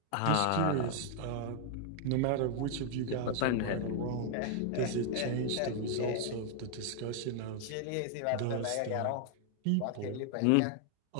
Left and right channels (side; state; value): both; different; correlation 0.00